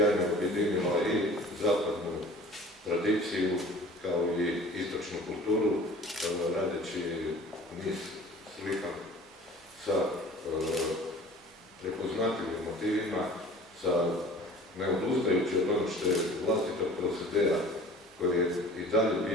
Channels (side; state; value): both; normal; correlation 0.45